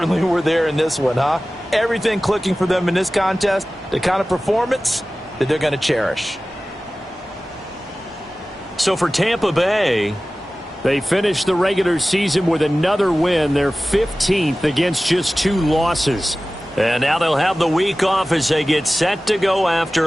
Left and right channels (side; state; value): both; normal; correlation 0.97